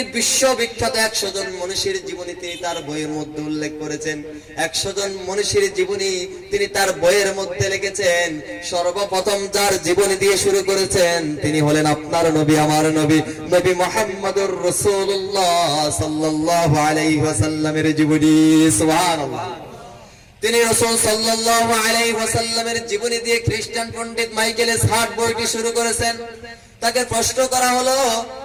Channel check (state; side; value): identical; both; correlation 1.00